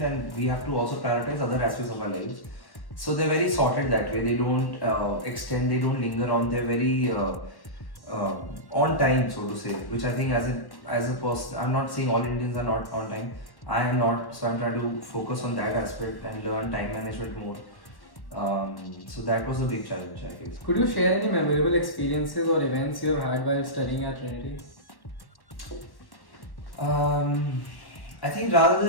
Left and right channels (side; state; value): right; late; 1.1 ms